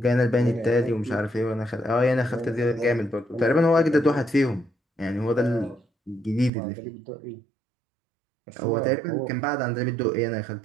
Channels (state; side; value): drops out; left; at 6.5 s